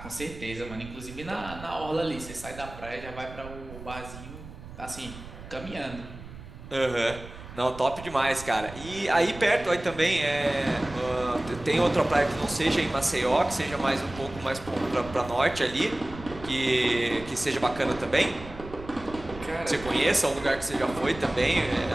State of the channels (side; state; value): right; noise; rumble, 14 dB below the sound